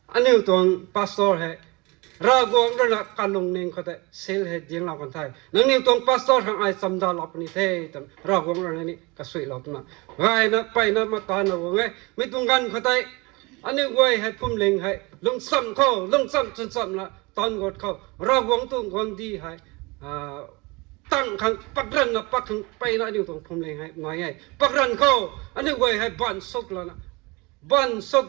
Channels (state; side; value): quieter; left; 25.6 dB